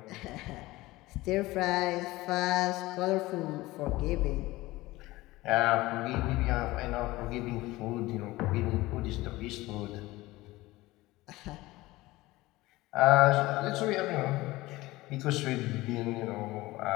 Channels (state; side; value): quieter; right; 19.2 dB